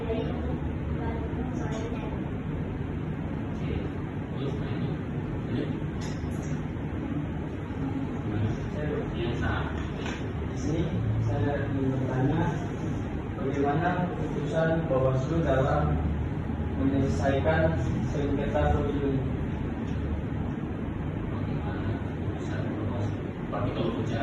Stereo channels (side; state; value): both; identical; correlation 1.00